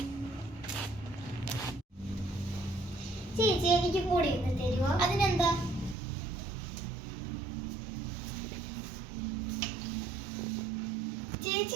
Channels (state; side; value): drops out; left; at 6.0 s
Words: ചേച്ചി എനിക്ക് കൂടി ഇന്ന് തരുമോ? അതിനെന്താ?